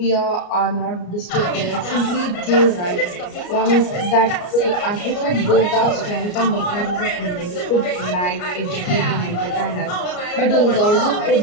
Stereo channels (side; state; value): right; late; 34 ms